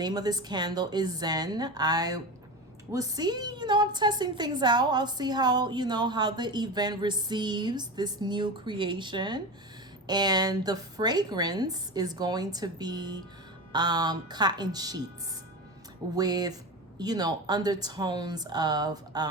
of this candle is Zen. I will see, I'm testing things out. I'll see how, how the event receives this new creation. And the fragrance is going to be cotton sheets with undertones of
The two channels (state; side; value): normal; both; correlation 0.24